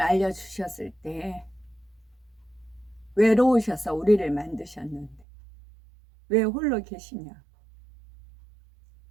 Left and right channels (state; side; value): drops out; left; at 5.2 s